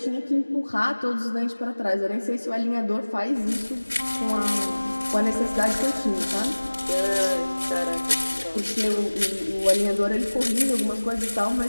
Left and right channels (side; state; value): both; inverted; correlation -1.00